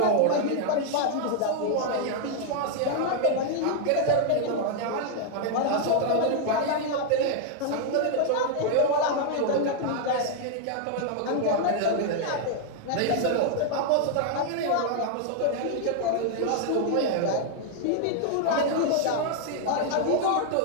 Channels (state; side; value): different; both; correlation 0.00